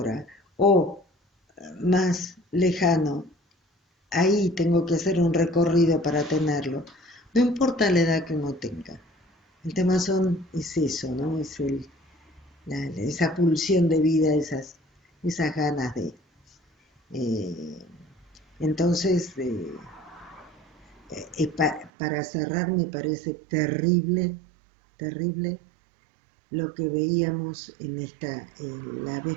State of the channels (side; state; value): left; drops out; at 21.9 s